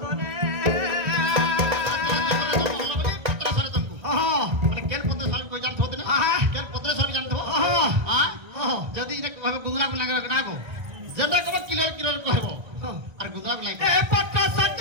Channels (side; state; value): left; late; 1.8 ms